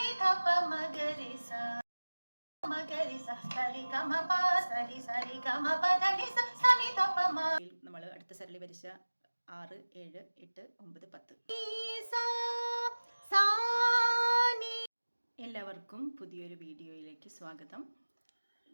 ധപ മഗരി സ മഗരി സ സരി ഗമ പ സരി സരി ഗമ പ ധനി സ സനി ധപ മ. നമ്മൾ അടുത്ത സരളി വരിച്ച 6, 7, 8, 9, 10. എല്ലാവർക്കും പുതിയൊരു വീഡിയോയിലേക്ക് സ്വാഗതം.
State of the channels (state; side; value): inverted; both; correlation -1.00